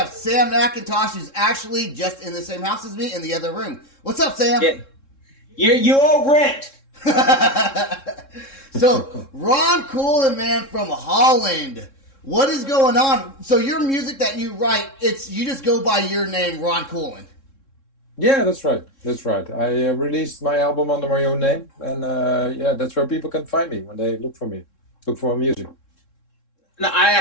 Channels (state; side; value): late; right; 3.7 ms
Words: Sam McIntosh, who's actually just in the same house as me in the other room. What's up, Sam? Yeah. You owe rent. So, Ron Coolen, man, from Holland. What is going on? So your music that you write, you just go by your name, Ron Coolen. Yeah, that's right. That's right. I released my album under my own name, and that's where people can find me when they look for me, look for my music. No, I